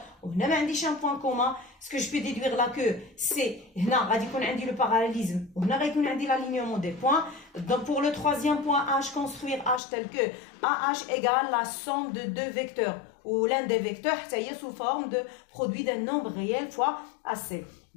وهنا ما عنديش un point commun. Ce que je peux déduire là que c'est هنا غادي يكون عندي le parallélisme وهنا غيكون عندي l'alignement des points. Donc pour le troisième point H, construire H tel que AH égale la somme de deux vecteurs ou l'un des vecteurs حتى هي sous forme de produit d'un nombre réel fois AC.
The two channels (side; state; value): right; drops out; at 9.8 s